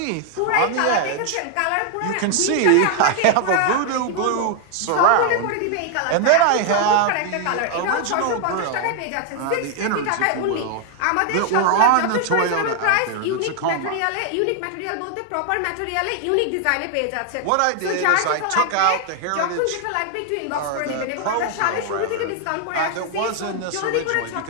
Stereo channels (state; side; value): different; both; correlation 0.00